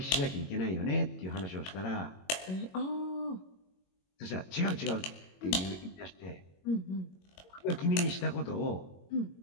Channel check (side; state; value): right; late; 22 ms